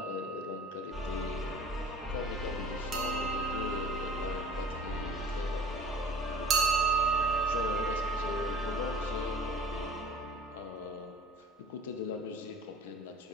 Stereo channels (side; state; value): both; normal; correlation 0.43